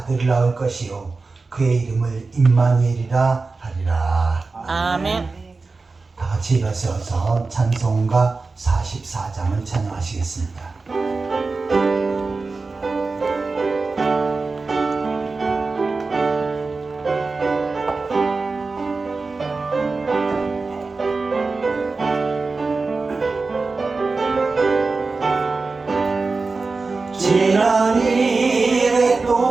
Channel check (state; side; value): quieter; left; 4.0 dB